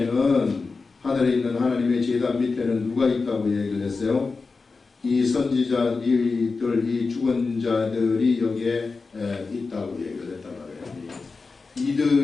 하늘에 있는 하나님의 제단 밑에는 누가 있다고 얘기를 했어요? 이 선지자들, 이 죽은 자들이 여기에 있다고 얘기를 했단 말이에요.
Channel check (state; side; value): quieter; right; 4.2 dB